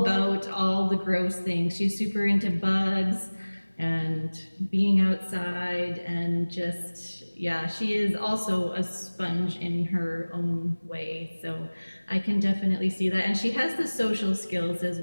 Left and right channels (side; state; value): both; inverted; correlation -1.00